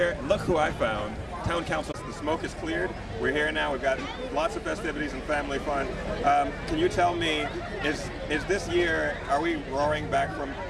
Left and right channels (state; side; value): identical; both; correlation 1.00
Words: Look who I found. Town Council, the smoke is cleared. We're here now. We've got lots of festivities and family fun. Can you tell me, is this year, are we roaring back from